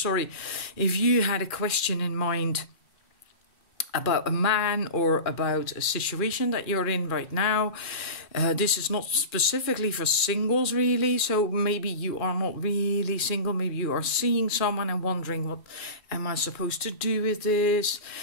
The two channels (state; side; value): late; right; 2.4 ms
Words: you had a question in mind about a man or about a situation that you're in right now, this is not specifically for singles really, so maybe you are not really single, maybe you are seeing someone and wondering, what am I supposed to do with this?